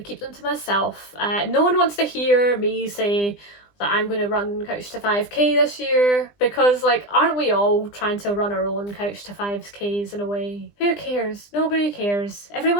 keep them to myself. No one wants to hear me say that I'm going to run Couch to 5k this year because like aren't we all trying to run our own Couch to 5k's in a way? Who cares? Nobody cares.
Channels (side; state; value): right; late; 20 ms